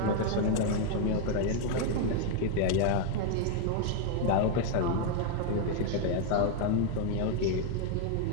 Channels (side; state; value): both; different; correlation 0.01